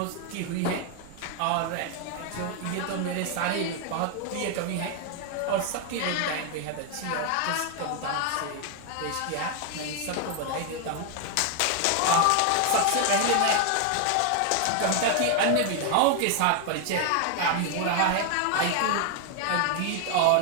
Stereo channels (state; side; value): different; both; correlation 0.00